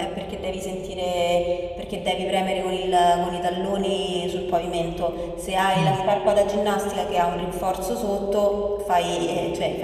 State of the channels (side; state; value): both; identical; correlation 1.00